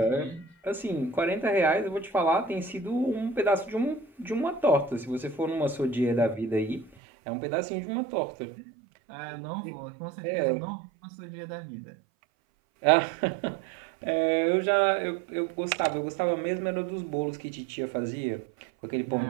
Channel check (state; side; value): drops out; left; at 6.9 s